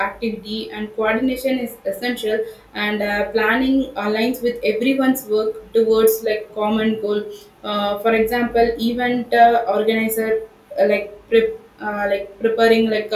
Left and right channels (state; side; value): identical; both; correlation 1.00